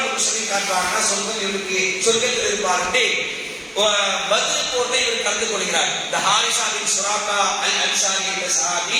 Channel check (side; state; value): both; identical; correlation 1.00